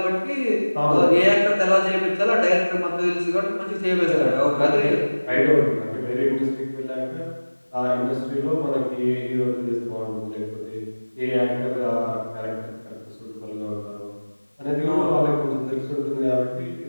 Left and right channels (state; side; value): inverted; both; correlation -1.00